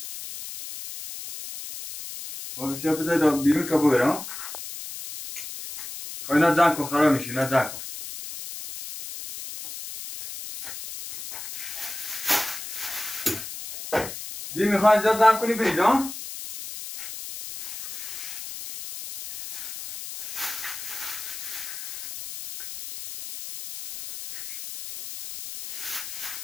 باید سیاه بذاری بیرون تا ببرم. اینا زن کن خراب میشه. اینا زن کن. دیگه میخوای اینجا دم کنی برید ها؟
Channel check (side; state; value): left; noise; hiss, 9 dB below the sound